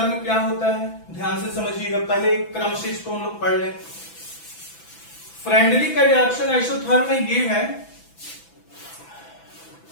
क्या होता है? ध्यान से समझिएगा, पहले एक क्रम से इसको हम लोग पढ़ लें। फ्रेंडलिक एडजॉर्प्शन आइसोथर्म में ये है,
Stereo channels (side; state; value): right; late; 6.0 ms